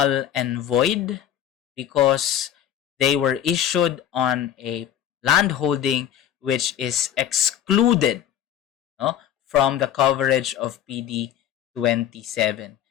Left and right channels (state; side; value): quieter; right; 10.3 dB